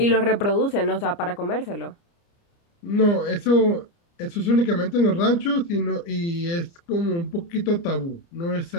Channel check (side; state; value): right; late; 29 ms